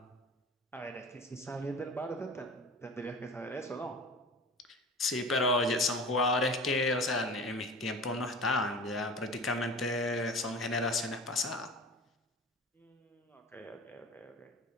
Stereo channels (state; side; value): normal; both; correlation 0.36